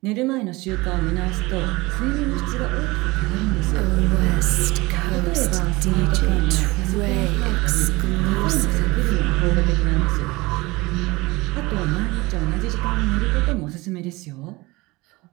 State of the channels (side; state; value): left; quieter; 22.1 dB